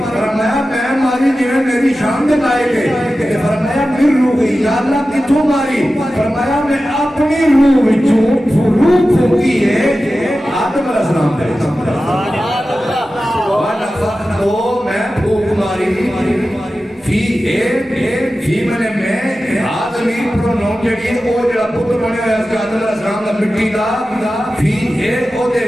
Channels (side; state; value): both; normal; correlation 0.94